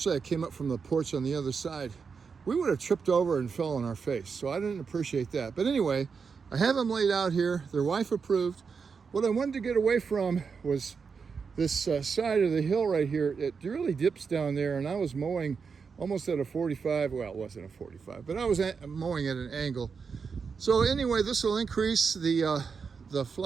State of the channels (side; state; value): left; quieter; 5.6 dB